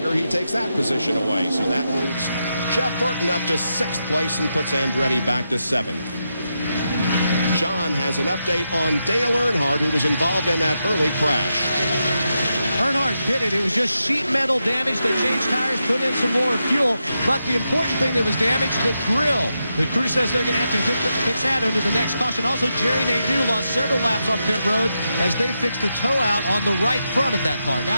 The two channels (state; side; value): inverted; both; correlation -0.86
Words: He takes that position away. So that moves Jeff Burton up to 6th place and puts Andretti back to 7th. John has an update on Dale Earnhardt, who was involved in that early crash. Earnhardt pitted. It was just sheet metal damage. They changed tires, put in some more fuel. But the important thing that was damaged, the grill. The crew says they're going to have to fix that under the next caution. Also, Jerry Nadeau lost several laps on pit road as they fixed the tow out on the right front of that car.